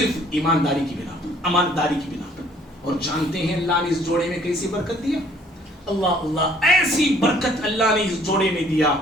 ایمانداری کی بنا پر, امانتداری کی بنا پر. اور جانتے ہیں اللہ نے اس جوڑے میں کیسی برکت دیا؟ اللہ اللہ, ایسی برکت اللہ نے اس جوڑے میں دیا,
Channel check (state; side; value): normal; both; correlation 0.60